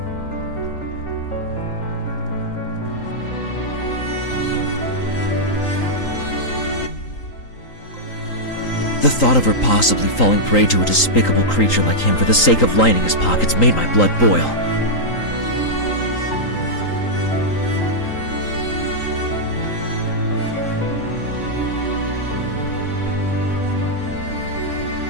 The thought of her possibly falling prey to a despicable creature like him for the sake of lining his pockets made my blood boil.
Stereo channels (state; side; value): late; right; 3.8 ms